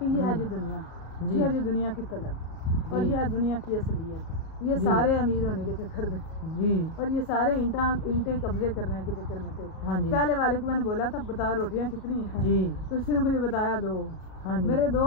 ये है जी दुनिया, ये है जी दुनिया की तलब, और ये है दुनिया की असलियत। ये सारे अमीर होने के चक्कर में जी, और ये सारे ईंटें कब्जे करने के चक्कर में थे। हाँ जी। पहले वाले को मैंने बोला था बता रोटियां कितनी हैं जी, तो उसने मुझे बताया 2। हाँ जी। मेरे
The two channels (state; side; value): late; right; 37 ms